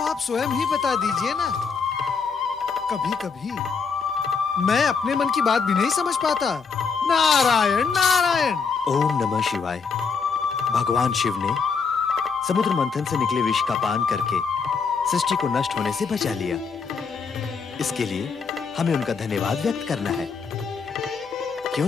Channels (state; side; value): quieter; right; 5.4 dB